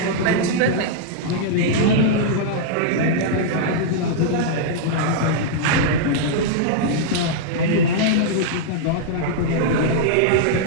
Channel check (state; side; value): different; both; correlation -0.02